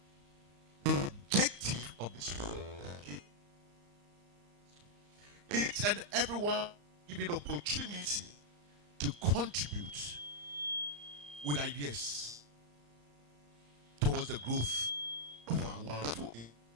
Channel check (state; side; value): late; left; 34 ms